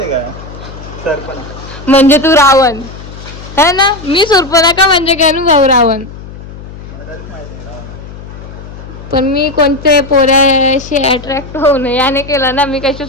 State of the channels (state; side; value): noise; left; hum, 14 dB below the sound